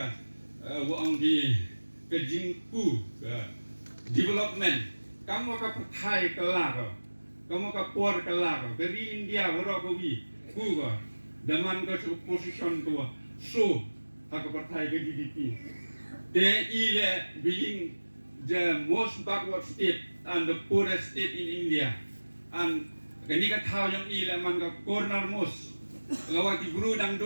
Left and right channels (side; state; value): both; inverted; correlation -1.00